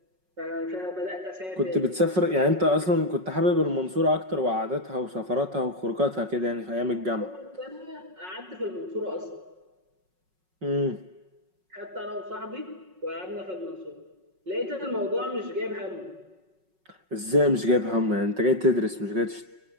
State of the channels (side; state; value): left; late; 5.4 ms